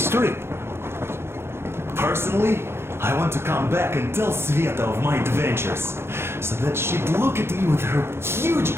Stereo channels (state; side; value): late; left; 0.12 ms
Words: trip? Personally, I want to come back and tell Sveta of my adventures, so that she'd look at me with her huge